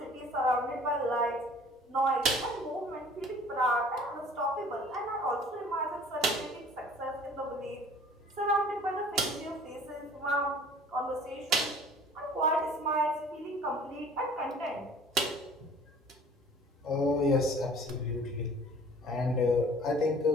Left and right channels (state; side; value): normal; both; correlation 0.49